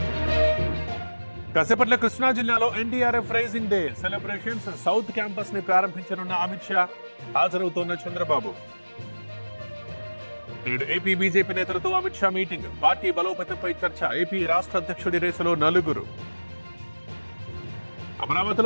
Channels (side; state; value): both; inverted; correlation -1.00